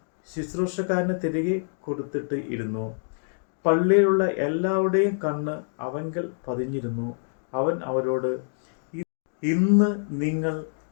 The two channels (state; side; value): silent; right; digital silence